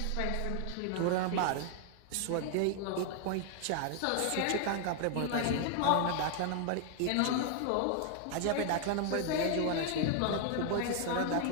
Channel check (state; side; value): different; both; correlation 0.00